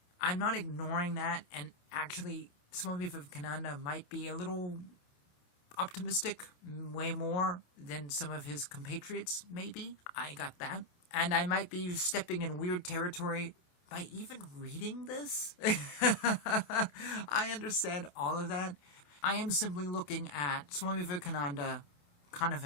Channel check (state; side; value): late; right; 28 ms